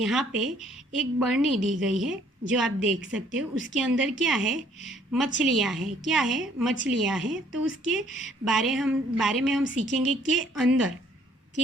पे एक बरनी दी गई है जो आप देख सकते हो। उसके अंदर क्या है? मछलियाँ हैं। क्या है? मछलियाँ हैं। तो उसके बारे में हम सीखेंगे के अंदर।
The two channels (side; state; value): both; normal; correlation 0.62